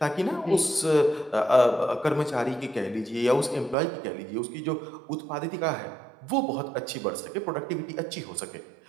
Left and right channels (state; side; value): drops out; left; at 3.8 s